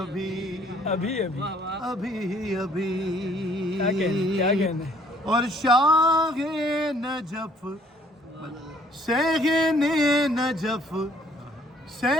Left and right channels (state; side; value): normal; both; correlation 0.61